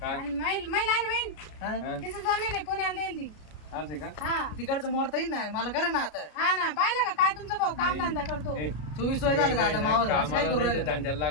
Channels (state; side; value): late; right; 33 ms